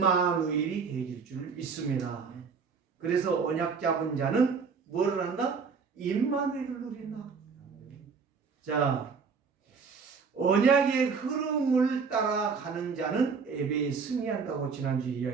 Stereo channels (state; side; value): quieter; left; 5.4 dB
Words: 되실 줄 믿습니다. 그래서 언약 잡은 자는 뭐를 한다? 임마누엘을 누린다. 자, 언약의 흐름을 따라가는 자는 예배에 승리한다고 지난주에